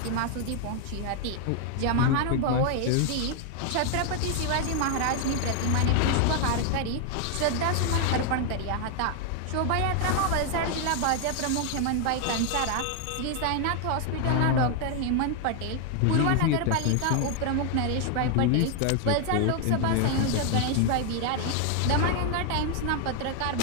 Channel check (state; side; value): different; both; correlation 0.00